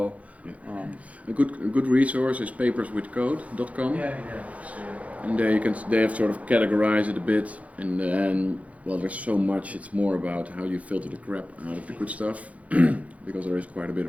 Yeah. A good resource is paperswithcode.com. And there they have sort of categorized it a bit, and then there's so much. It's more about how you filter the crap out of the good stuff, because there is quite a bit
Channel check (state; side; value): late; left; 0.067 ms